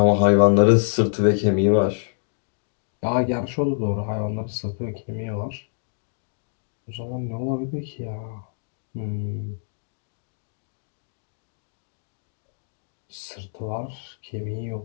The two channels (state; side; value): silent; right; digital silence